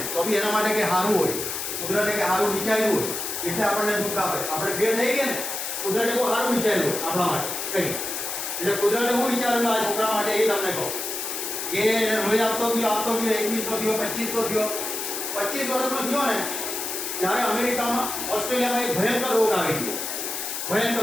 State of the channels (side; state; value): left; noise; hiss, 4 dB below the sound